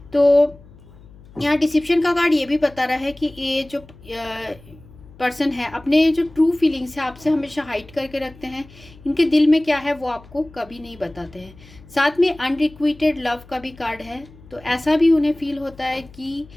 तो यहाँ डिसिप्शन का कार्ड ये भी बता रहा है कि ये जो पर्सन है अपने जो ट्रू फीलिंग्स है आपसे हमेशा हाइड करके रखते हैं, इनके दिल में क्या है वो आपको कभी नहीं बताते हैं। साथ में अनरिक्विटेड लव का भी कार्ड है, तो ऐसा भी उन्हें फील होता है कि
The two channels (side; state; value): left; noise; hum, 22 dB below the sound